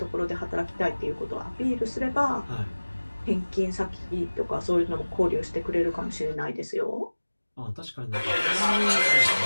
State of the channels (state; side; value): inverted; both; correlation -1.00